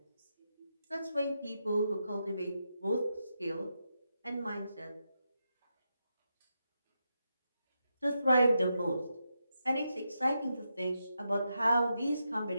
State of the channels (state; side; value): inverted; both; correlation -0.85